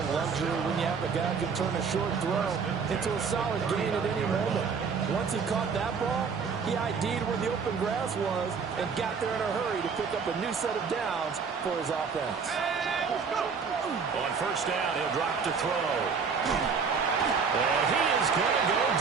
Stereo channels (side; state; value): left; quieter; 5.7 dB